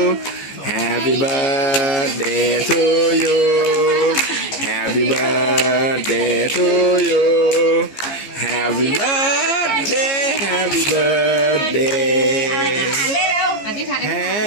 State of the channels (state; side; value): late; right; 15 ms